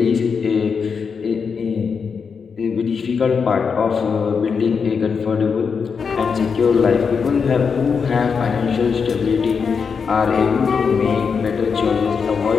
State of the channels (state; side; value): quieter; right; 5.8 dB